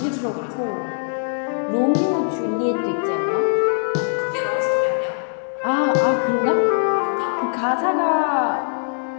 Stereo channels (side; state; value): right; silent; 65 dB below the other